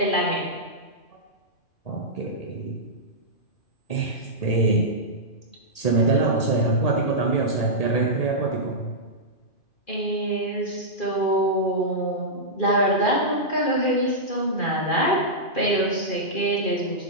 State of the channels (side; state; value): right; late; 2.4 ms